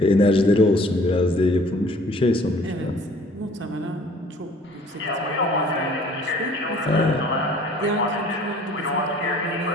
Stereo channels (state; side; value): normal; both; correlation 0.53